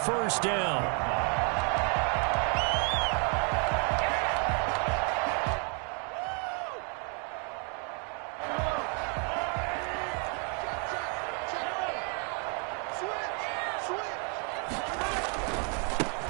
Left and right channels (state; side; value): quieter; left; 38.9 dB